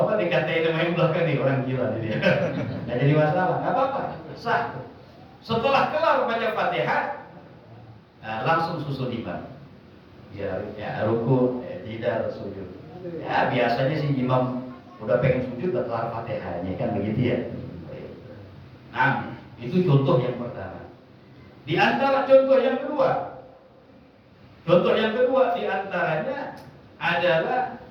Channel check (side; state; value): both; identical; correlation 1.00